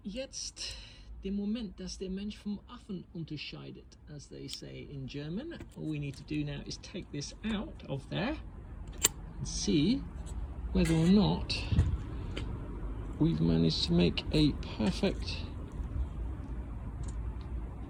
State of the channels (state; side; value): identical; both; correlation 1.00